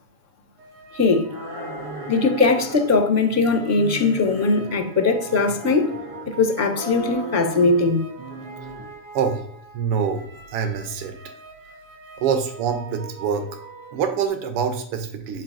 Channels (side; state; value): left; late; 7.0 ms